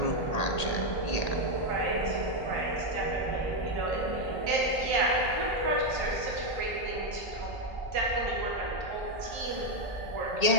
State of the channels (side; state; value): right; late; 1.8 ms